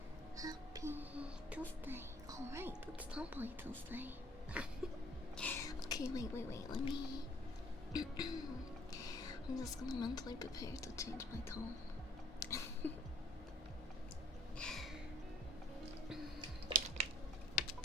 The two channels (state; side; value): normal; both; correlation 0.55